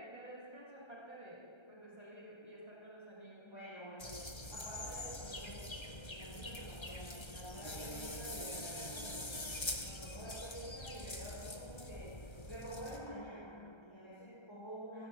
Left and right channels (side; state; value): right; late; 1.3 ms